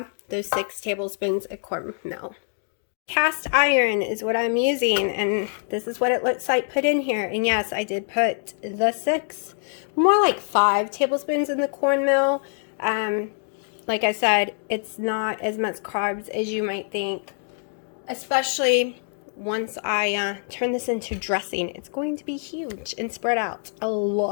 those 6 tablespoons of cornmeal. Cast iron is what I'm using, and this is what it looks like put in here. And yes, I did put the 6, more like 5 tablespoons in the cornmeal. Like I said, it's not as much carbs as you might think, especially once I turn this into dressing. It's going to be huge and spread out a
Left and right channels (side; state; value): right; silent; 56 dB below the other